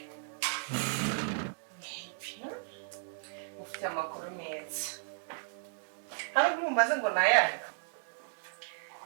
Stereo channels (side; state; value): left; silent; digital silence